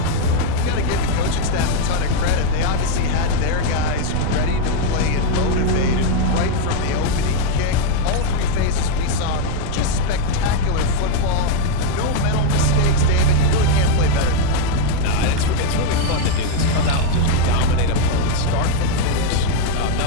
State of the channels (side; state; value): both; different; correlation 0.01